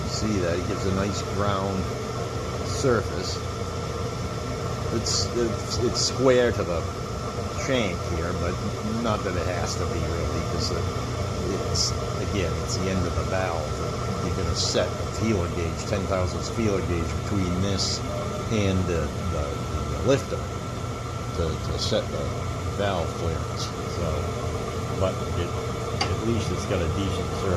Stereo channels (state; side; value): identical; both; correlation 1.00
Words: you see that it gives a nice ground surface. It's square to the shank here, but not that it has to be really, because it's the end of the valve. You're going to set a feeler gauge, 10 thousandths feeler gauge between this and the lifter to set the valve clearance. So, but at least it's got a decent